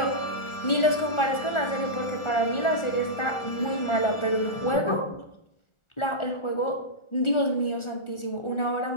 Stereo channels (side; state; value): right; late; 1.4 ms